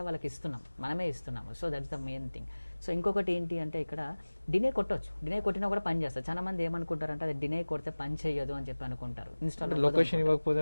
వాళ్ళకి ఇస్తున్నాం, మనమే ఇస్తున్నాము. So that's the main thing. So ఇంకొకటి ఏంటి అంటే ఇక్కడ డినే కొట్టవచ్చు, డినే కొట్టినా కూడా పని చేస్తారు. చాలా మంది ఏమనుకుంటారంటే అది డినే కొడితే పని చేయదు అని చెప్పి అనుకుంటారు. ఇన్స్టాల్ లొకేషన్ ఇవ్వకపోతే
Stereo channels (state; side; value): inverted; both; correlation -1.00